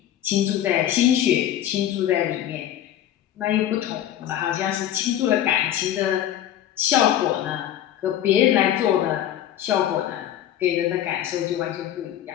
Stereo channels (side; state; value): right; quieter; 11.4 dB